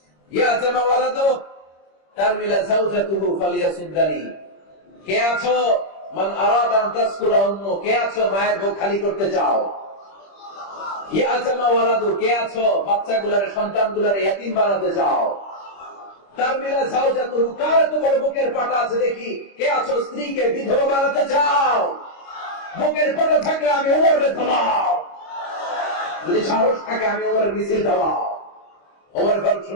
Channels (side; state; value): right; late; 25 ms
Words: ইয়াতামা ওয়ালাদু তারমিলা যাওজাতুহু ফালিয়াসুদ্দানি। কে আছো? মান আরাদা আন তাসকুলা উম্মু, কে আছো মায়ের বুক খালি করতে চাও? ইয়াতামা ওয়ালাদু, কে আছো বাচ্চাগুলার, সন্তানগুলার ইয়াতীম বানাতে চাও? তারমিলা যাওজাতুহু, কার তো বড় বুকের পাটা আছে দেখি, কে আছো স্ত্রীকে বিধবা বানাতে চাও? বুকের পাটা থাকলে আমি ওমরের থামাও, যদি সাহস থাকে আমি ওমরের মিছিল থামাও। ওমর ফারুক